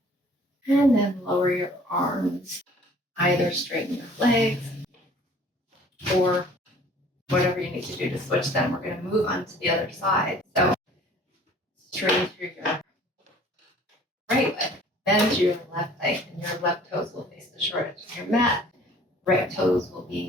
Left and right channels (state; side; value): normal; both; correlation 0.52